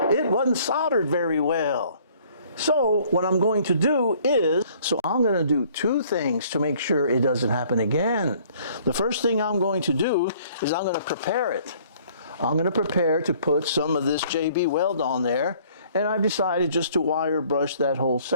wasn't soldered very well. So what I'm going to do is, I'm going to do two things to make sure it doesn't happen again. The first thing I'm going to do is I'm going to prepare it. I'm going to prepare to put some of this JB weld on there, and I've decided just to wire brush that whole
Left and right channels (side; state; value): both; inverted; correlation -0.58